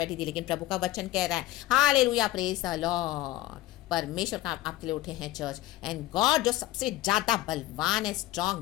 थी। लेकिन प्रभु का वचन कह रहा है, हालेलुया, प्रेज द लॉर्ड, परमेश्वर का आपके लिए उठे हैं चर्च, एंड गॉड जो सबसे ज्यादा बलवान है,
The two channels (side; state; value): right; quieter; 16.3 dB